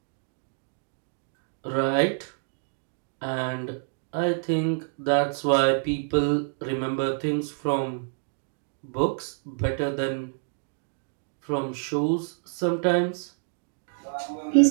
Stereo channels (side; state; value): left; silent; digital silence